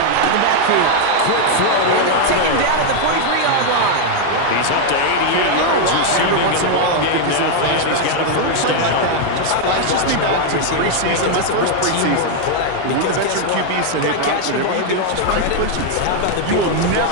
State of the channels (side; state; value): both; different; correlation 0.00